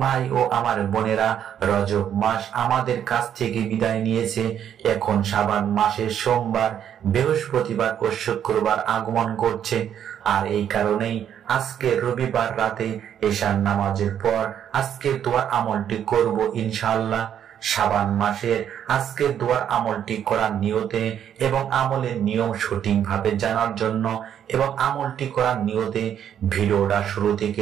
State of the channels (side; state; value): left; quieter; 9.5 dB